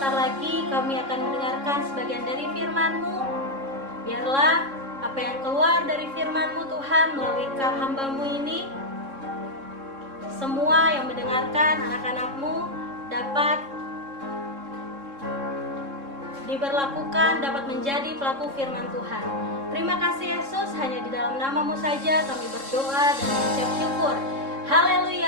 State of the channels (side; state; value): left; late; 3.7 ms